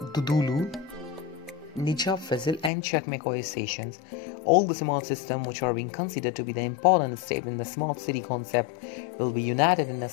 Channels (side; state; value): right; drops out; at 2.7 s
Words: Dudulu, Nijab Fazil, and Çekmeköy stations. All the smart systems which are being considered to be the important step in the smart city concept will be united in the